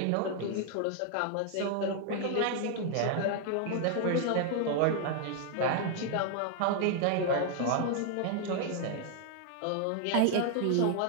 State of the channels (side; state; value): both; different; correlation 0.00